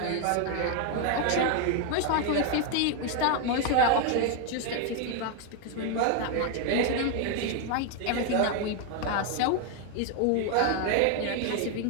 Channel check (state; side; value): different; both; correlation 0.01